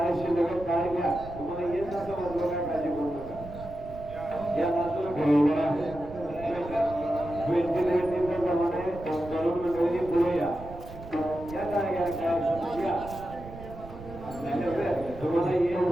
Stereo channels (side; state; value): right; noise; rumble, 15 dB below the sound